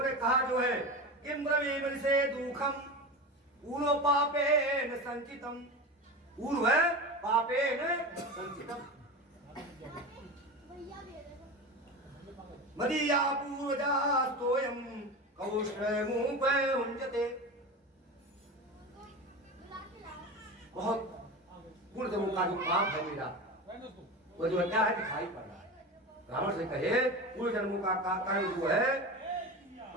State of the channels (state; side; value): normal; both; correlation 0.26